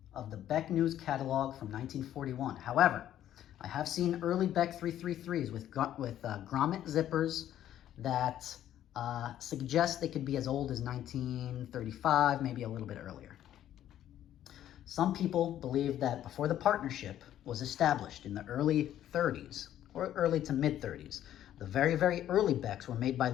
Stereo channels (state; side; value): quieter; right; 11.6 dB